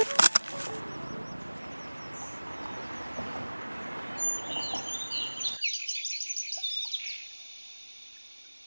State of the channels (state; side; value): inverted; both; correlation -1.00